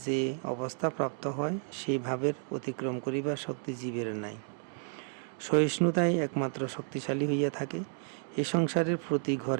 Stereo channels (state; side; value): silent; left; 57 dB below the other